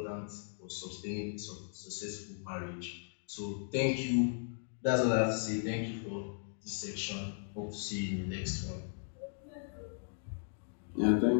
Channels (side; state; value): right; silent; digital silence